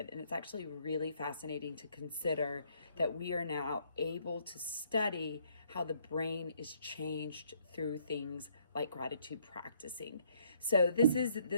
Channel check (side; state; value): both; inverted; correlation -0.66